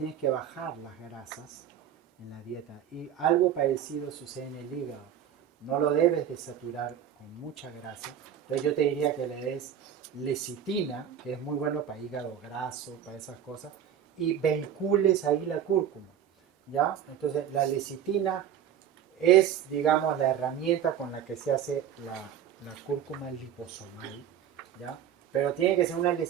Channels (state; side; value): quieter; left; 9.6 dB